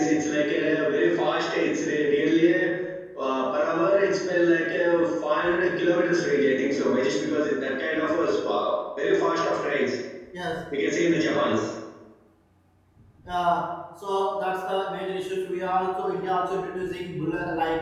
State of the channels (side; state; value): both; identical; correlation 1.00